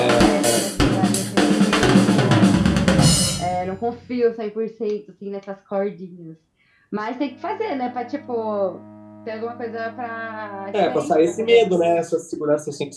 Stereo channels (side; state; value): both; identical; correlation 1.00